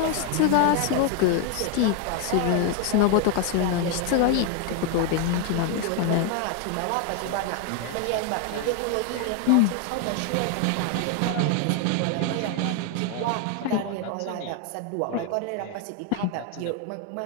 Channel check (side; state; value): both; different; correlation 0.01